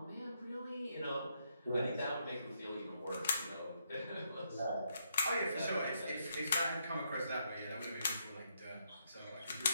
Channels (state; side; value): inverted; both; correlation -0.76